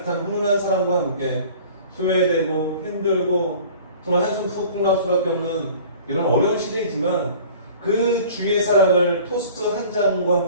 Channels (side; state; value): both; inverted; correlation -0.46